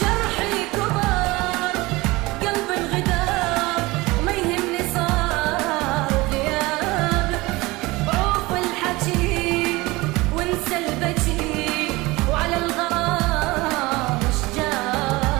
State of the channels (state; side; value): quieter; left; 21.6 dB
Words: كبر قلبي انغدار، ما يهمني صار غيابك، عوف الحكي وانسى البكي، وعلى الغرام مش